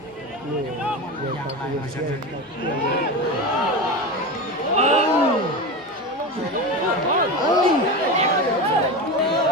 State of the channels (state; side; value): normal; both; correlation 0.23